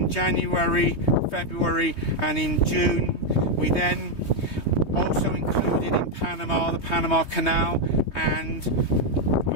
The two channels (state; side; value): late; right; 3.2 ms